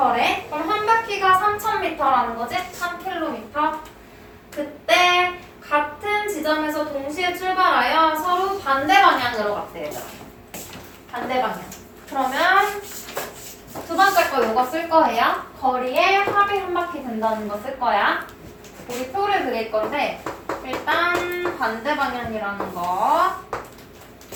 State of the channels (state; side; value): identical; both; correlation 1.00